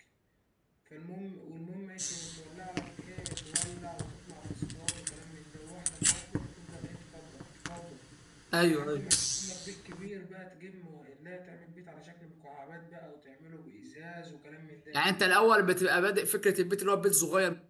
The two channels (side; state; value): both; identical; correlation 1.00